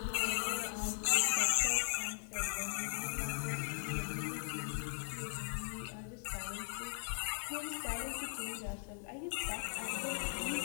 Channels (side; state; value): right; silent; 52 dB below the other